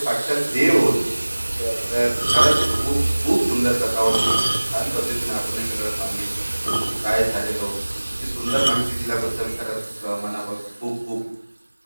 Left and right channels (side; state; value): both; inverted; correlation -1.00